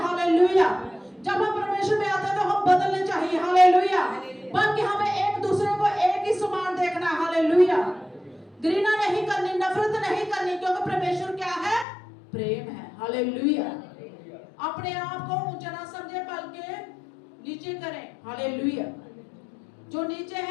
जब हम परमेश्वर में आते हैं तो हम बदलने चाहिए। हालेलुया। बल्कि हमें एक दूसरे को एक ही समान देखना। हालेलुया। घृणा नहीं करनी, नफरत नहीं करनी, क्योंकि परमेश्वर क्या है? प्रेम है। हालेलुया। अपने आप को ऊंचा ना समझे, बल्कि नीचे करें। हालेलुया। जो नीचे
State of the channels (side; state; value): right; drops out; at 11.9 s